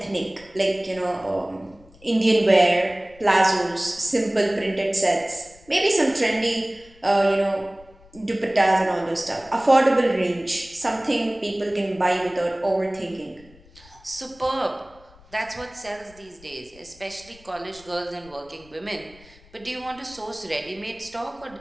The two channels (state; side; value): noise; left; rumble, 25 dB below the sound